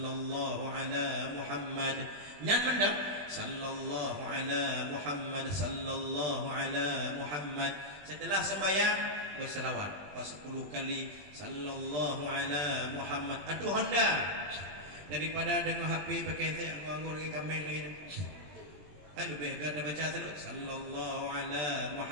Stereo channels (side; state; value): left; late; 20 ms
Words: ala Muhammad. Nyan mendap sallallahu ala Muhammad, sallallahu ala Muhammad. Setelah sembahyang berselawat 10 kali sallallahu ala Muhammad. Aduh anda daripada dengan HP pakai saya nganggur lagi kambing lagi. Lebih ganda baca sallallahu ala